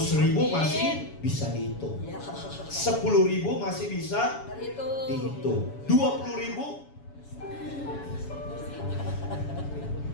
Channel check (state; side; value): late; right; 7.1 ms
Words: masih bisa dihitung, 10.000 masih bisa dihitung, 20.000